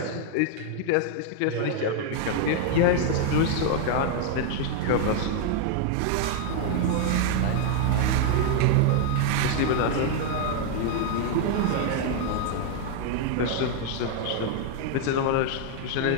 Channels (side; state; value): both; different; correlation 0.00